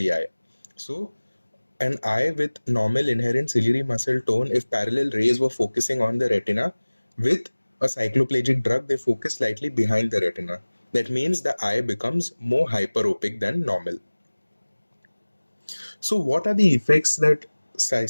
eye. So an eye with normal inherent ciliary muscle tone, if parallel rays were focusing on the retina, with a cycloplegic drug, they focus slightly behind the retina. That means the eye becomes more hyperopic than normal. So what are the effects that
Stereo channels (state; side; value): inverted; both; correlation -1.00